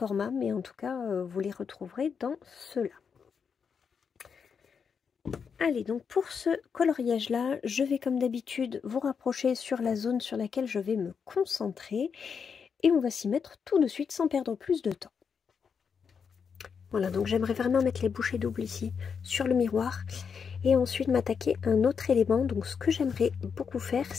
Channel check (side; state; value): right; quieter; 6.4 dB